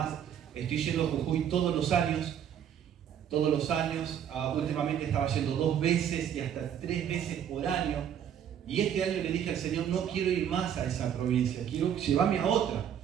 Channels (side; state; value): left; quieter; 9.2 dB